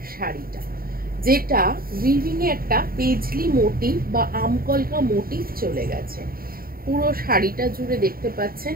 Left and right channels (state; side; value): late; left; 0.43 ms